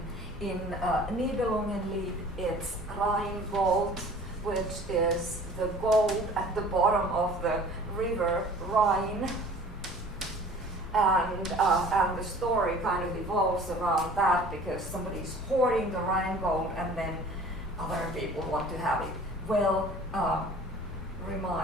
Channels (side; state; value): both; normal; correlation 0.47